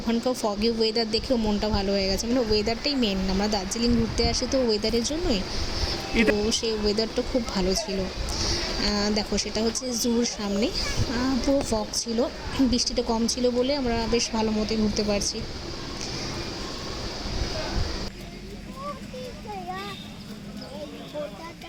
ওখানকার ফগি ওয়েদার দেখেও মনটা ভালো হয়ে গেছে, মানে ওয়েদারটাই মেন, আমরা দার্জিলিং ঘুরতে আসি তো ওয়েদারের জন্যই, তো সেই ওয়েদারটা খুব ভালো ছিল। দেখো সেটা হচ্ছে জুর সামনে, পুরো ফগ ছিল, বৃষ্টিটা কম ছিল বলে আমরা বেশ ভালো মতোই ঘুরতে পারছি।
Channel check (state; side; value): identical; both; correlation 1.00